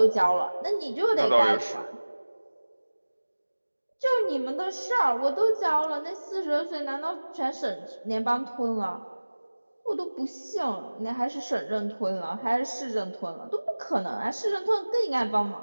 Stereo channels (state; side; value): inverted; both; correlation -1.00